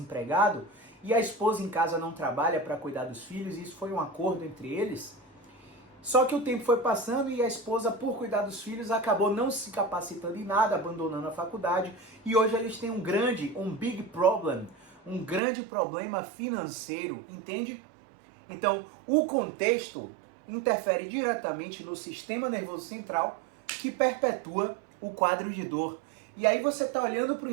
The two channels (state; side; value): drops out; left; at 15.4 s